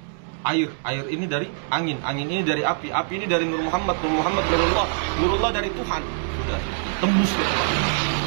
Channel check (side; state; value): left; silent; 63 dB below the other